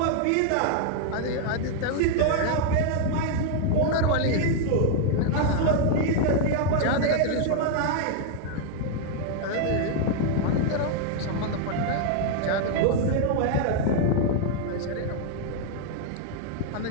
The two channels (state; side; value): different; both; correlation 0.00